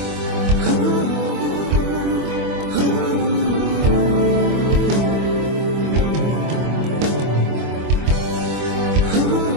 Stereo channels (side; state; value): left; late; 24 ms